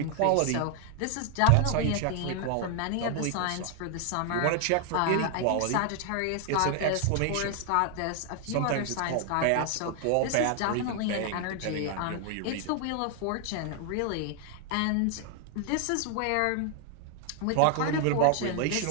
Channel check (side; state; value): both; different; correlation 0.00